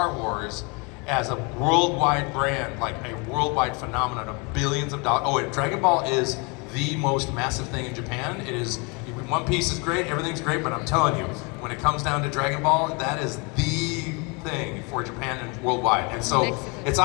Wars as a worldwide brand, like a worldwide phenomenon of billions of dollars. Oh, and Dragon Ball is the most massive thing in Japan. It is, One Piece is great, everything's great, but I'm telling you, when it comes down to Dragon Ball, that is the thing for Japan and worldwide. And so it's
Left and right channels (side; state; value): right; quieter; 30.8 dB